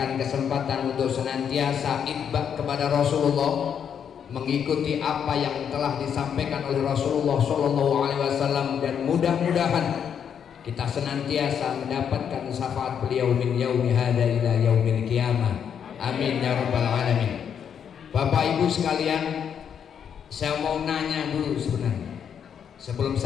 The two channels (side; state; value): right; quieter; 8.0 dB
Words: kesempatan untuk senantiasa itba kepada Rasulullah, mengikuti apa yang telah disampaikan oleh Rasulullah sallallahu alaihi wasallam, dan mudah-mudahan kita senantiasa mendapatkan syafaat beliau min yaumi hadza ila yaumil qiyamah. Amin ya rabbal alamin. Bapak Ibu sekalian, saya mau nanya dulu sebenarnya. Sebelum